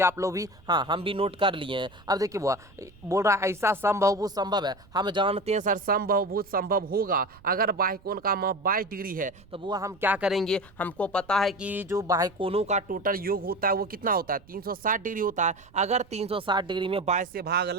आप लोग भी, हाँ हम भी नोट कर लिए हैं। अब देखिए बुआ बोल रहा है ऐसा समबाहुभुज संभव है, हम जानते हैं सर समबाहुभुज संभव होगा अगर बाह्य कोण का माप 22 डिग्री है। तो बुआ हम क्या करेंगे, हमको पता है कि जो बाह्य कोणों का टोटल योग होता है वो कितना होता है, 360 डिग्री होता है। अगर 360 डिग्री में 22 से भाग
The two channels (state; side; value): noise; right; rumble, 25 dB below the sound